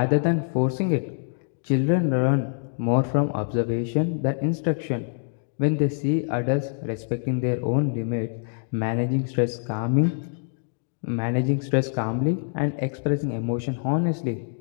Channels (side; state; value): right; silent; digital silence